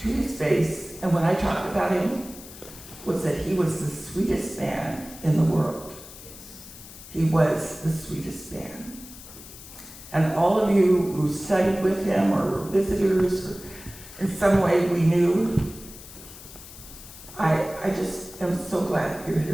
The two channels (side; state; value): left; noise; hiss, 16 dB below the sound